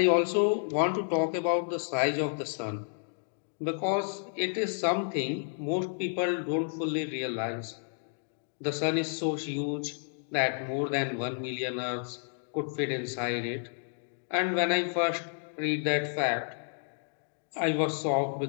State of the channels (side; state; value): right; silent; digital silence